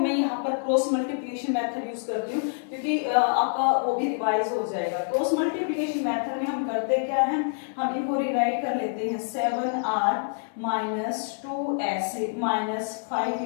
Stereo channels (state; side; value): silent; right; digital silence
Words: यहाँ पर क्रॉस मल्टीप्लिकेशन मेथड यूज करती हूँ क्योंकि आपका वो भी रिवाइज हो जाएगा। क्रॉस मल्टीप्लिकेशन मेथड में हम करते क्या हैं, हम इनको रिराइट कर लेते हैं 7r minus 2s minus 5